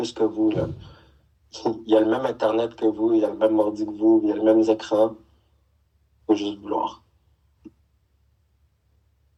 que vous, là. Il a le même Internet que vous, il a le même ordi que vous, il a le même écran. Il faut juste vouloir.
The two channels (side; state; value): both; identical; correlation 1.00